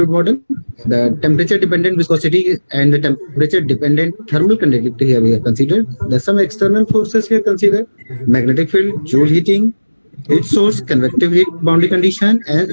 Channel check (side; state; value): both; inverted; correlation -1.00